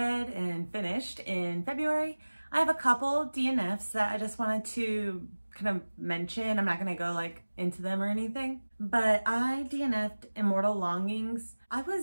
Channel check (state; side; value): inverted; both; correlation -1.00